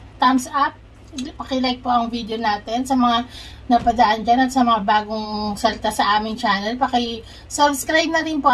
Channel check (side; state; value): both; identical; correlation 1.00